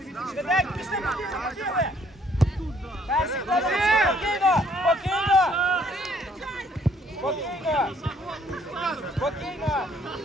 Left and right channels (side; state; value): both; normal; correlation 0.64